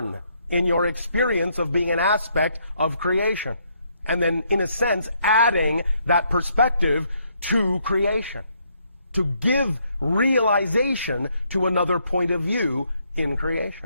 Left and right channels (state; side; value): inverted; both; correlation -0.72